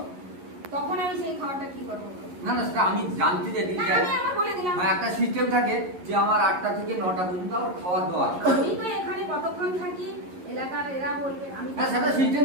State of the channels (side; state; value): left; late; 11 ms